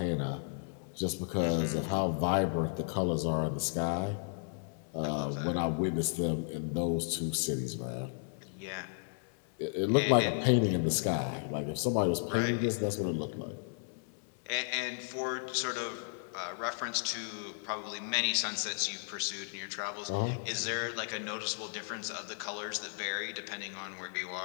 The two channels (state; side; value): silent; right; 55 dB below the other